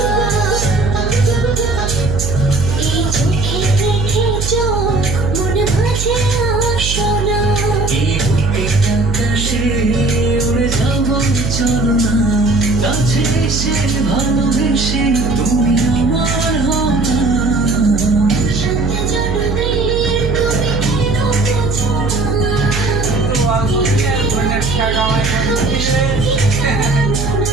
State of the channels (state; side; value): noise; right; hum, 3 dB below the sound